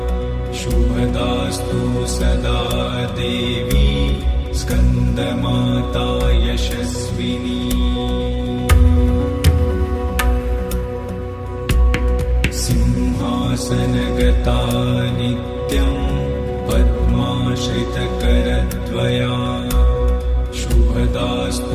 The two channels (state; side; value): identical; both; correlation 1.00